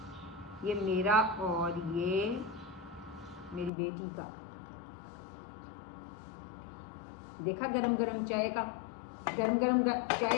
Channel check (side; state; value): right; drops out; at 3.7 s